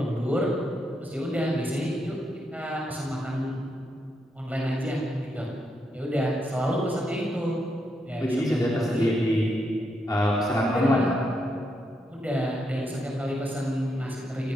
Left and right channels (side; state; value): both; normal; correlation 0.81